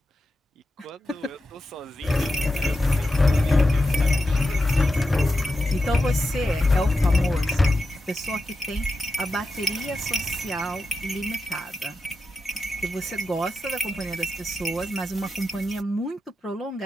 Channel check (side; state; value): both; normal; correlation 0.89